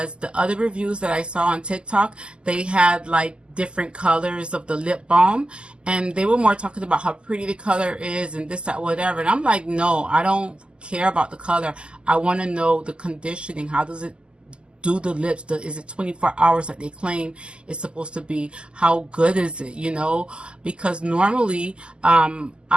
the other reviews that I saw on TikTok, they had like different colors of the lip balm, and they were more talking about how pretty the color is and this, that, whatever. And I'm like, no, I don't care about the color. I want to know the conditioning. How does it do the lips? Is it 24 hours like they claim it's supposed to be? How good is it, you know? Because normally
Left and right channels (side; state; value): left; late; 0.050 ms